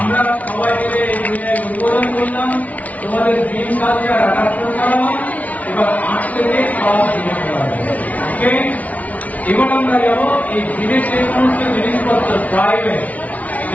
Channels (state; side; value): late; right; 0.071 ms